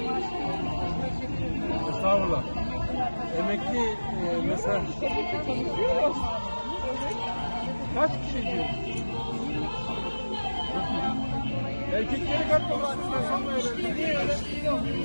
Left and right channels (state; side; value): inverted; both; correlation -1.00